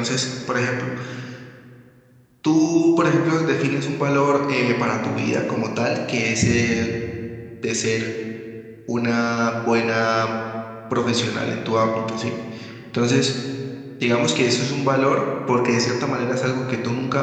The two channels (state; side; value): identical; both; correlation 1.00